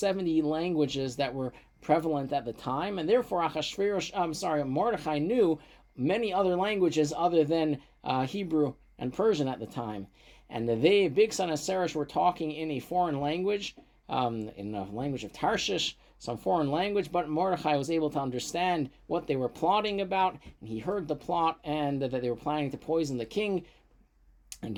languages that were prevalent at the time, and therefore Mordechai knew many other languages other than Hebrew and Persian at the time. And they, Bigsan and Seresh, were talking in a foreign language, in a language of Tarshish, some foreign language, but Mordechai was able to understand what they were plotting about, and he heard the plot, and that they were planning to poison the king and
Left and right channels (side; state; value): both; identical; correlation 1.00